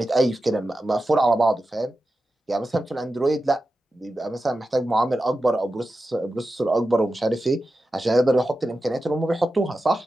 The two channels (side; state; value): both; normal; correlation 0.92